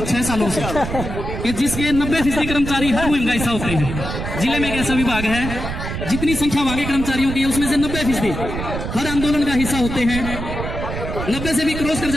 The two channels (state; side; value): noise; right; rumble, 6 dB below the sound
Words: 6 सालों से कि जिसके 90% कर्मचारी हर मुहिम का हिस्सा होते हैं। जिले में एक ऐसा विभाग है जितनी संख्या वहां के कर्मचारियों की है उसमें से 90% हर आंदोलन का हिस्सा होते हैं। 90 से भी क्रॉस कर